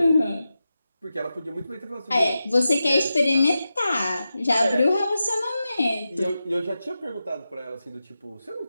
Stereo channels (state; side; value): inverted; both; correlation -0.91